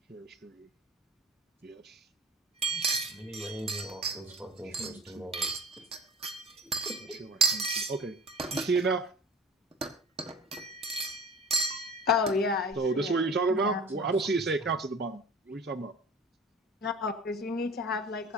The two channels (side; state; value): both; normal; correlation 0.43